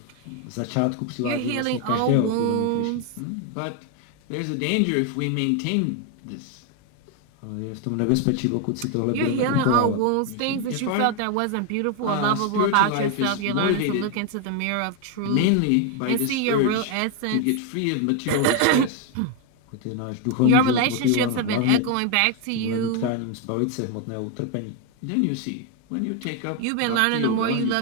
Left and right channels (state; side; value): different; both; correlation 0.01